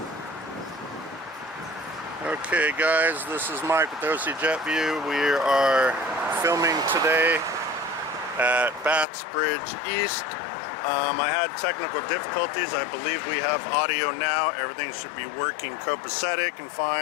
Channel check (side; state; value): right; drops out; at 9.1 s